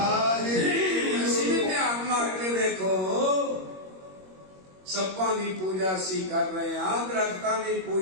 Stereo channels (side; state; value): left; late; 21 ms